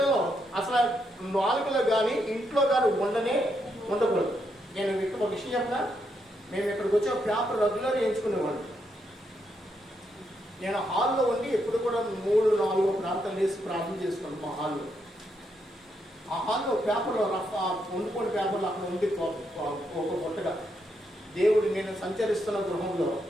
అసలు నాలుగులో కానీ ఇంట్లో కానీ ఉండకూడదు. నేను ఇక్కడ ఒక విషయం చెప్పినా, మేము ఇక్కడికి వచ్చే పేపర్ రెగ్యులర్ వేయించుకునేవాడు. నేను హాల్లో ఉండి ఎప్పుడు కూడా 3-4 ప్రాంతాలు వేసి ప్రార్థన చేసుకున్నాను మా హాల్లో. ఆ హాల్లో పేపర్లో వండుకొని పేపర్లు అక్కడ ఉండి ఒక కొట్టగా దేవుడు నేను సంచరిస్తున్న గృహంలో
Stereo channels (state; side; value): normal; both; correlation 0.79